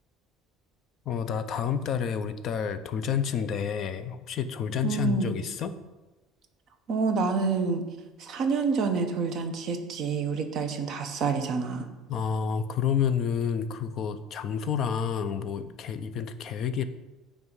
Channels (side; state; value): both; normal; correlation 0.35